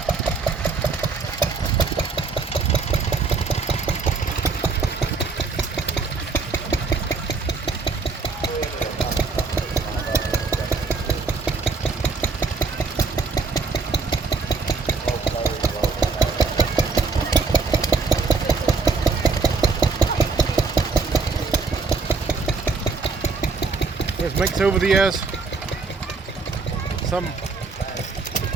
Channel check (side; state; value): left; quieter; 4.3 dB